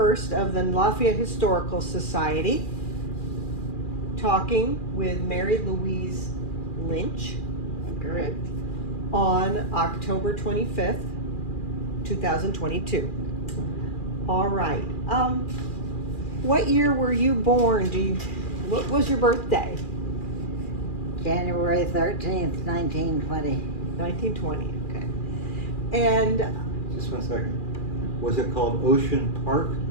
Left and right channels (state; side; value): late; right; 2.4 ms